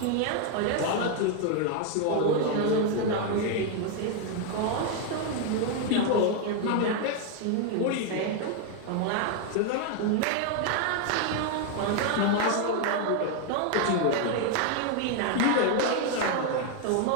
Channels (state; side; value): different; both; correlation 0.01